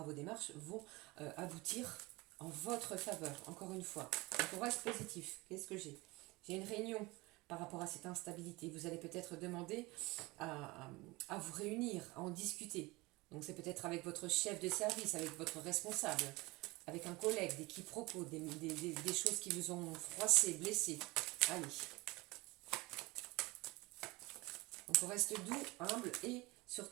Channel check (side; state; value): left; quieter; 22.6 dB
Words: vos démarches vont aboutir en votre faveur, encore une fois. Donc on reste positif. Qu'est-ce que j'ai? J'ai une réunion par rapport à cette instabilité. Vous allez peut-être demander à vous réunir, à en discuter. Donc c'est peut-être avec votre chef de service, avec votre responsable, avec un collègue, des quiproquos, des choses qui vous ont froissé, blessé. Allez. Donc on reste doux, humble et